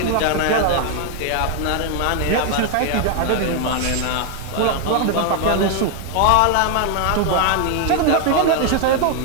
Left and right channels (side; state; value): both; different; correlation 0.00